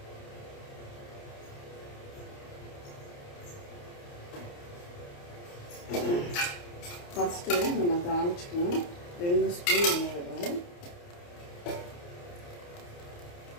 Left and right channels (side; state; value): right; late; 29 ms